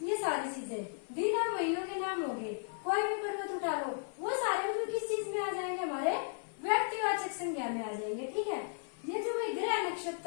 ये सारी चीजें। दिन और महीनों के नाम हो गए, कोई भी पर्वत उठा लो, वो सारे मतलब किस चीज में आ जाएंगे? हमारे व्यक्तिवाचक संज्ञा में आ जाएंगे। ठीक है, ये जो भाई ग्रह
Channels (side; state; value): right; silent; 54 dB below the other